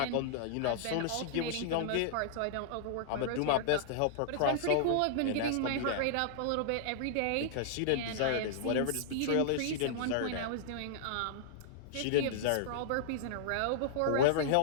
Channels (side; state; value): both; different; correlation -0.01